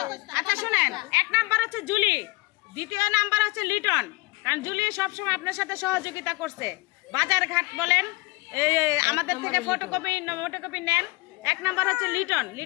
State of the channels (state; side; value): quieter; right; 24.0 dB